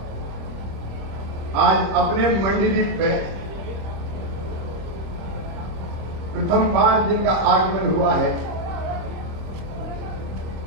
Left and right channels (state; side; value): late; left; 25 ms